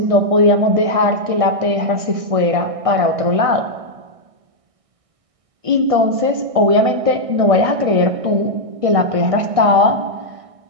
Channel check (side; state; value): left; late; 1.6 ms